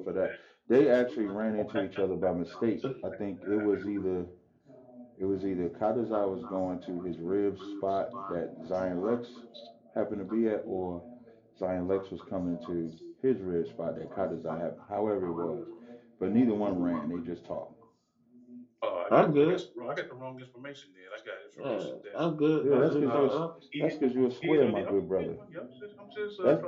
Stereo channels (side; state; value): both; identical; correlation 1.00